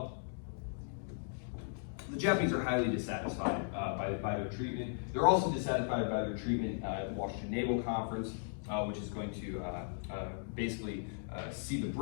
the Japanese are highly dissatisfied by their treatment. They're also dissatisfied by their treatment at the Washington Naval Conference, which is going to basically see the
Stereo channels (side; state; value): right; silent; digital silence